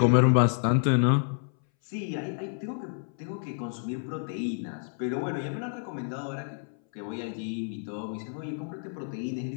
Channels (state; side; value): silent; right; 58 dB below the other